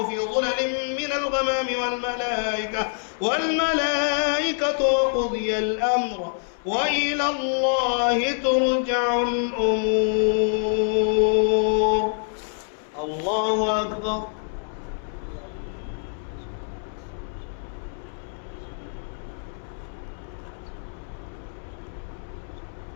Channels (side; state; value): right; silent; 61 dB below the other